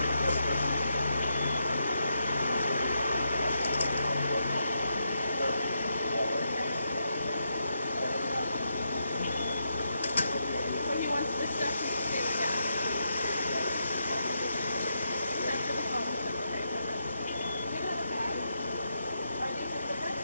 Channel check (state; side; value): inverted; both; correlation -0.82